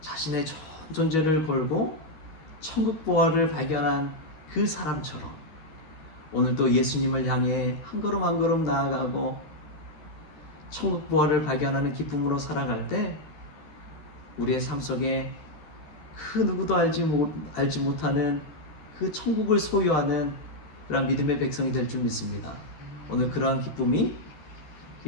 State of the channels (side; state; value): right; late; 12 ms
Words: 전 존재를 걸고 천국 보화를 발견한 그 사람처럼 오늘도 예수님을 향해 한 걸음 한 걸음 나아가고 천국 보화를 발견하는 기쁨으로 살아갈 때 우리의 삶 속에 그 누구도 알지 못하는 그 천국을 소유하는 그런 믿음의 백성이 될 줄 믿습니다. 오늘 그러한 기쁨이